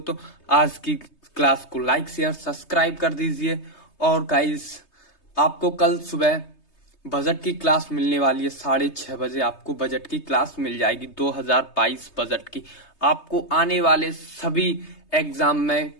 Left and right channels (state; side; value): late; right; 3.2 ms